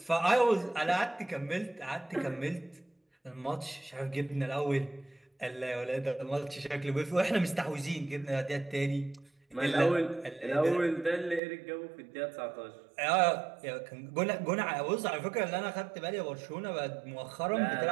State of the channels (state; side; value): drops out; left; at 11.4 s